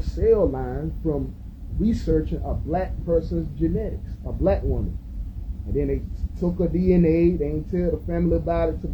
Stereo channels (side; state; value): both; identical; correlation 1.00